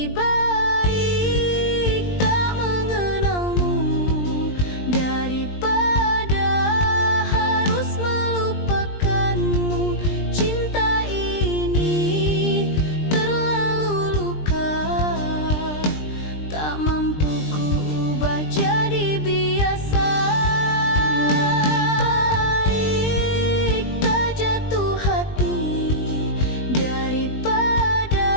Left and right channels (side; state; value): right; late; 20 ms